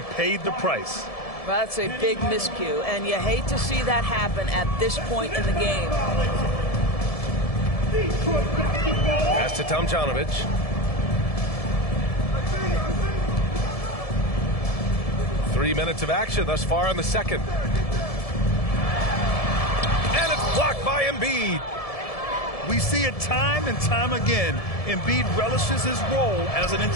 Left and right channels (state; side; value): late; right; 1.7 ms